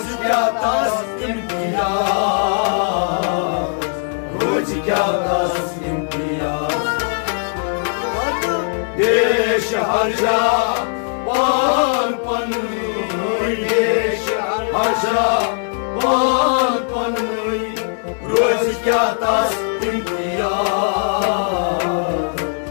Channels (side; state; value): right; silent; digital silence